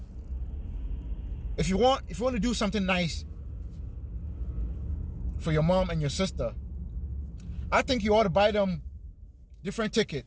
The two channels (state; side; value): identical; both; correlation 1.00